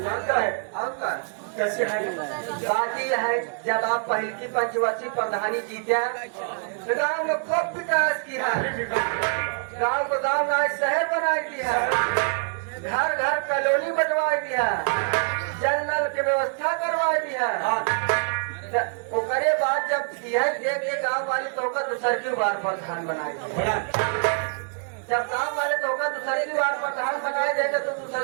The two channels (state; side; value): silent; left; 61 dB below the other